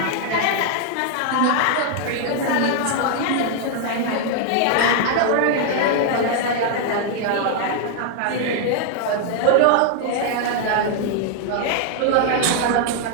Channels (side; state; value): both; different; correlation 0.00